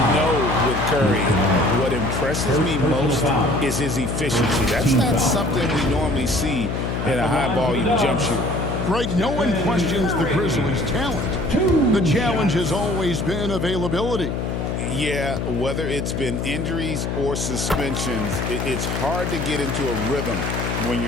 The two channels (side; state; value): left; noise; hum, 2 dB below the sound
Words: know with Curry, what impresses me most is his efficiency. That's not something we normally see in a high-volume jump shooter. Right, no one questions the Grizzlies' talent. The challenge has always been availability. Yeah, whether it's been injuries or suspensions, it's hard to get into a rhythm when